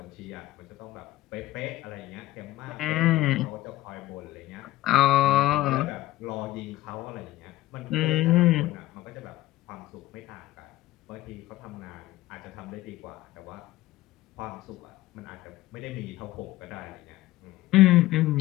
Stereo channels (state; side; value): quieter; right; 16.3 dB